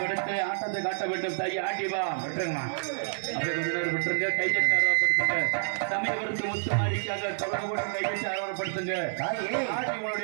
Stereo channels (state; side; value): silent; left; digital silence